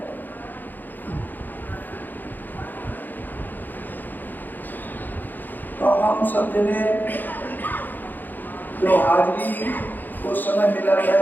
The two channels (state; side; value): late; right; 0.087 ms